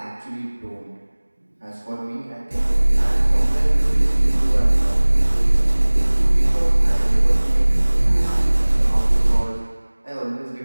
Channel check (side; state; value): both; inverted; correlation -1.00